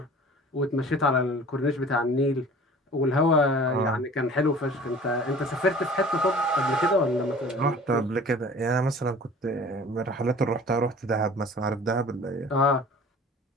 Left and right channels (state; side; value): normal; both; correlation 0.46